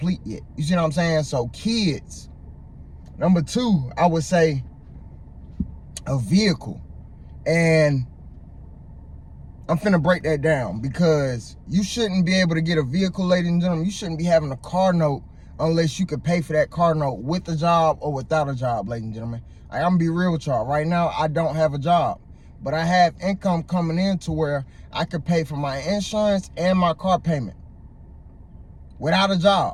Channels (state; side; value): identical; both; correlation 1.00